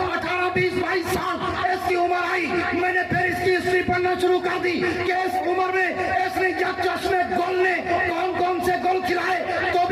18, 20, 22 साल इसकी उम्र आई, मैंने फिर इसकी हिस्ट्री पढ़ना शुरू कर दी कि इस उम्र में इसने जब चश्मे गोल ने कौन कौन से गोल खिलाए। तो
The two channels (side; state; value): both; identical; correlation 1.00